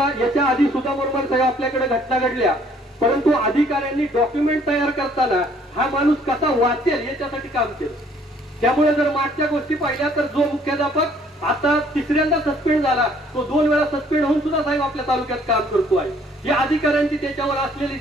आधी सुद्धा मोरमार साहेब आपल्याकडे घटना घडल्या, परंतु अधिकाऱ्यांनी डॉक्युमेंट तयार करताना हा माणूस कसा वाचेल याच्यासाठी काम केलं. त्यामुळे जर मागच्या गोष्टी पाहिल्या तर जो मुख्याध्यापक आता तिसऱ्यांदा सस्पेंड झाला तो 2 वेळा सस्पेंड होऊन सुद्धा साहेब आपल्या तालुक्यात काम करतो आहे. या अधिकाऱ्यांची त्याच्यावर असलेली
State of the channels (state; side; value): normal; both; correlation 0.60